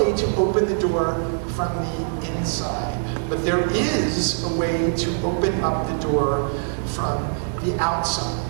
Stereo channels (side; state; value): left; silent; digital silence